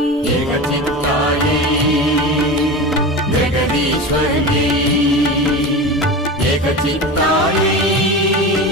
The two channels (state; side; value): normal; both; correlation 0.28